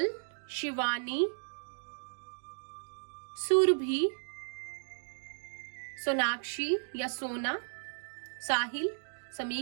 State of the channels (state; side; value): silent; left; digital silence